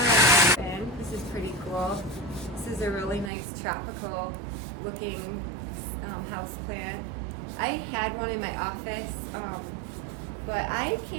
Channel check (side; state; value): left; drops out; at 3.3 s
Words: And this is pretty cool. This is a really nice tropical looking house plant. I had one in my office, but I